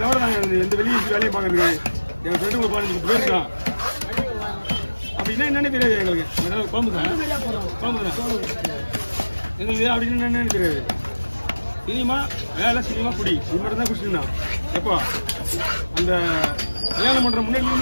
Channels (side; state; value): both; inverted; correlation -1.00